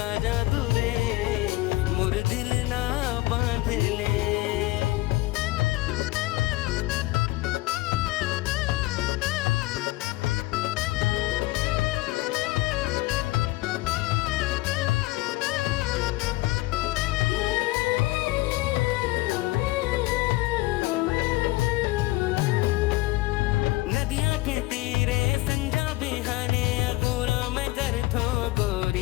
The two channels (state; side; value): quieter; right; 20.0 dB